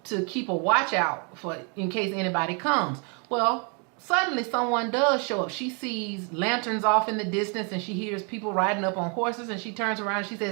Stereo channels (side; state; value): left; quieter; 36.1 dB